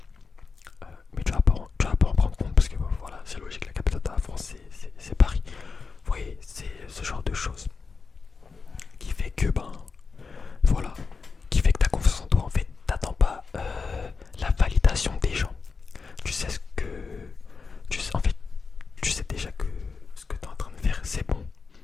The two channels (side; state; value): right; quieter; 4.8 dB